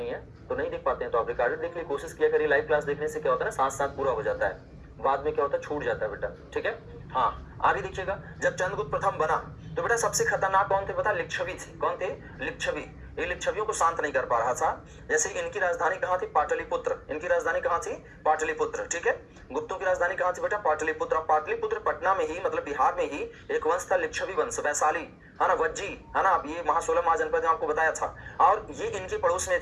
है, तो नहीं देख पाते हैं तो आप रिकॉर्डेड देख लिए, कोशिश किया करिए। लाइव क्लास देखने से क्या होता है ना, साथ साथ पूरा हो जाता है, बाद में क्या होता है छूट जाता है बेटा। ठीक है, हाँ आगे देखिएगा। जब चंद्रगुप्त प्रथम बना तो बेटा सबसे खतरनाक कौन थे पता, लिच्छवी थे। कौन थे, लिच्छवी। ये लिच्छवियों को शांत नहीं कर पा रहा था। जैसे इनकी राजधानी कहाँ थी, पाटलिपुत्र। इनकी राजधानी कहाँ थी, पाटलिपुत्र। ठीक है, गुप्तों की राजधानी कहाँ थी बेटा, पाटलिपुत्र। पाटलिपुत्र पटना में ही, मतलब बिहार में ही एक वंश था लिच्छवी वंश, वैशाली, है ना, वज्जी, है ना। अब ये महासोलह महाजनपद में आपको बताया था, और ये इनके पड़ोस में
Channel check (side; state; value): both; identical; correlation 1.00